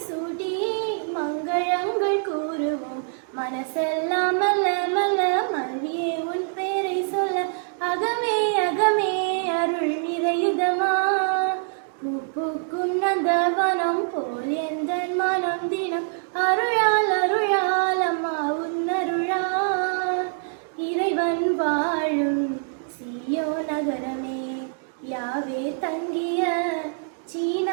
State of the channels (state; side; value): silent; left; digital silence